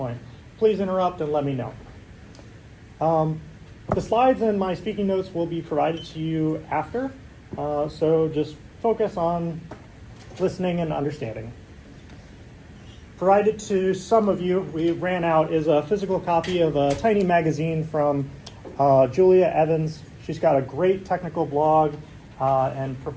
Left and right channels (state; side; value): identical; both; correlation 1.00